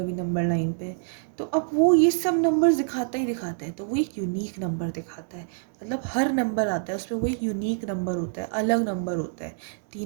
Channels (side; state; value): left; silent; digital silence